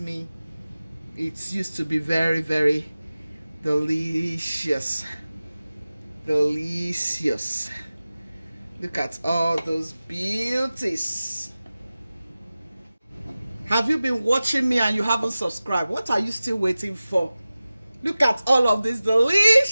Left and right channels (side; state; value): both; inverted; correlation -0.97